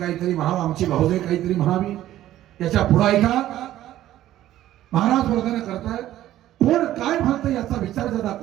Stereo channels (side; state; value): left; quieter; 13.5 dB